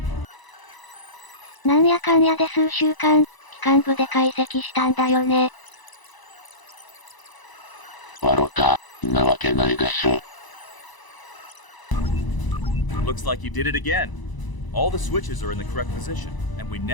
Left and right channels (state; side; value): late; right; 1.0 ms